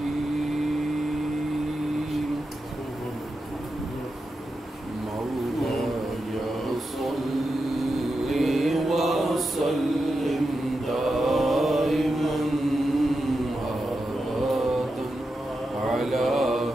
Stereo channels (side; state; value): both; normal; correlation 0.89